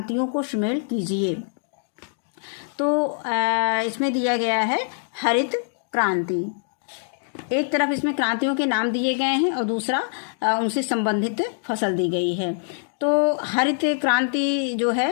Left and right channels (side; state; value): right; silent; digital silence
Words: को शामिल कीजिए। तो इसमें दिया गया है हरित क्रांति। एक तरफ इसमें क्रांतियों के नाम दिए गए हैं और दूसरा उनसे संबंधित फसल दी गई है। तो हरित क्रांति जो है